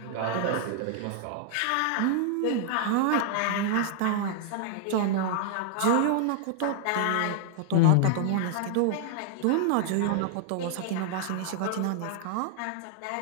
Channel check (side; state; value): both; different; correlation 0.00